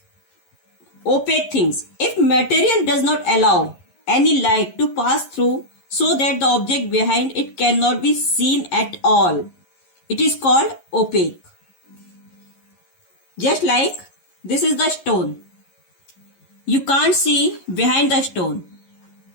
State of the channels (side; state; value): right; late; 11 ms